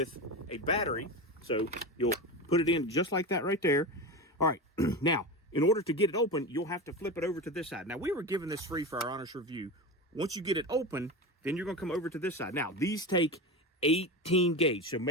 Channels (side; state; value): both; normal; correlation 0.23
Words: a battery. So you'll put it in just like that right there. All right, now, in order to get it open, you'll have to flip it over to this side. Now, we were given this free for our honest review. Once you get it open, then you're going to come over to this side. Now, these take 18 gauge, so